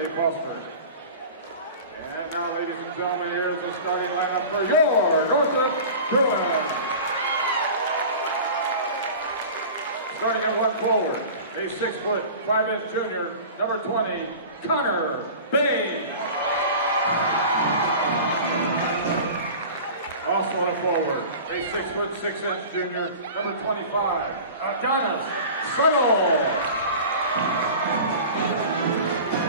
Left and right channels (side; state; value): both; inverted; correlation -0.37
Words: Foster. And now, ladies and gentlemen, here's the starting lineup for your Northrop Bruins. Starting at one forward, a 6'5" junior, number 20, Connor Bain. Also at a forward, a 6'6" junior, number 25, Adonis Settle.